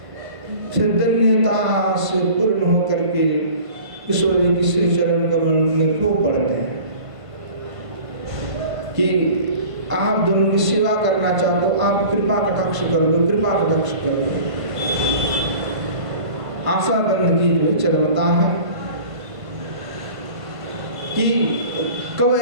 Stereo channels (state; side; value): late; left; 1.5 ms